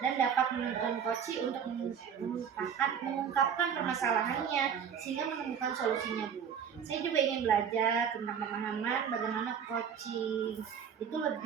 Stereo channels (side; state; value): left; quieter; 7.7 dB